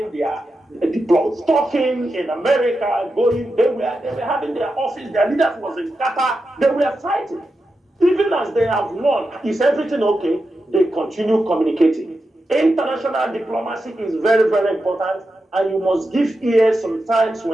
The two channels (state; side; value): normal; both; correlation 0.89